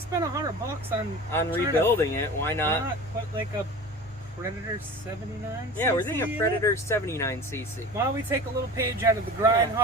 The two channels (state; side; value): normal; both; correlation 0.36